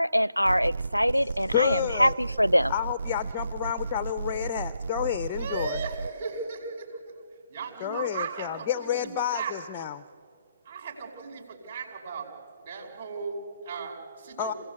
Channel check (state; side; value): inverted; both; correlation -0.76